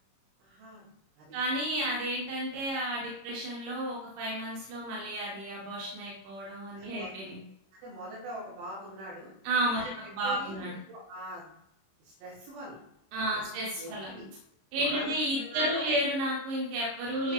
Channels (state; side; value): late; left; 26 ms